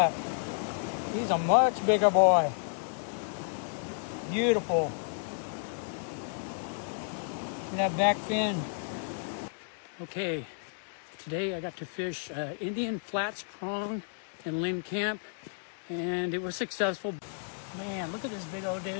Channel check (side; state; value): right; silent; digital silence